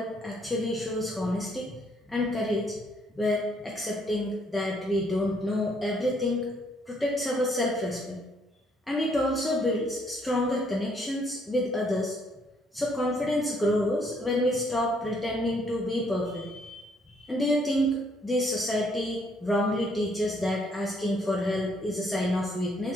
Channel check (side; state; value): both; normal; correlation 0.68